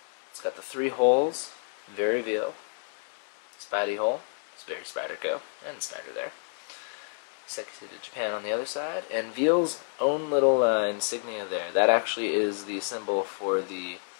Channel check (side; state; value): right; silent; 58 dB below the other